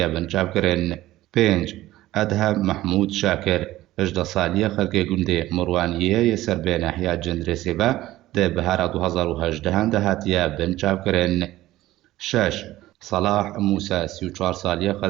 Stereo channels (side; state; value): left; quieter; 15.9 dB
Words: بنچاف کرن. 5 ادهم محمود شاکر 18 سالیه خلقی گوندی مروانیه سر به نحیا جندرسی با ده بهار 2018 ده هاتیه بنچاف کرن. 6 صلاح موسى 34 سالیه